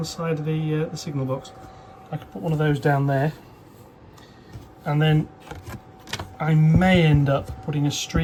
side of the signal box. I could put one of those down there. And then I may end up putting a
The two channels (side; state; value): both; identical; correlation 1.00